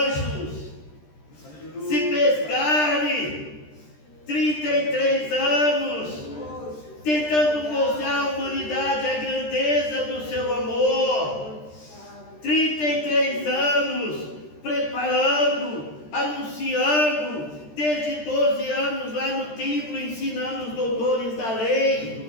se fez carne, 33 anos, tentando mostrar à humanidade a grandeza do seu amor, 33 anos, preparando, anunciando, desde 12 anos lá no templo, ensinando os doutores da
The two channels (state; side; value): late; right; 13 ms